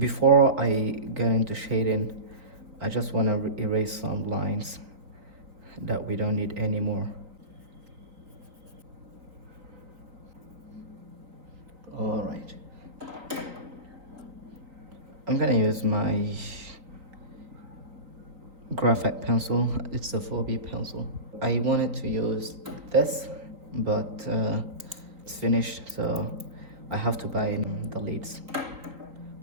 I get into shading, I just want to erase some lines that we don't need anymore. All right, I'm gonna use my graphite pencil. It's a 4B pencil. I wanted to use this, but it's finished, so I have to buy the leads.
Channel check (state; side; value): late; left; 3.9 ms